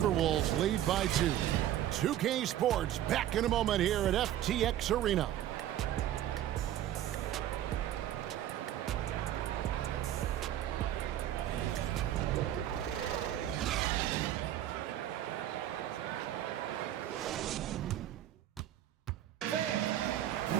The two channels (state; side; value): quieter; left; 12.3 dB